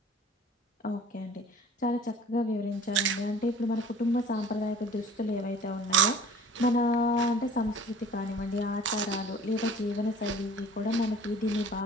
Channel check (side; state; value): both; normal; correlation 0.46